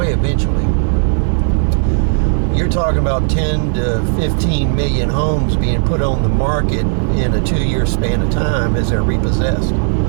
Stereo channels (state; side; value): silent; left; digital silence